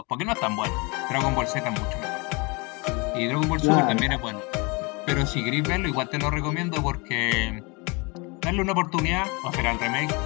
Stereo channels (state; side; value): quieter; right; 28.8 dB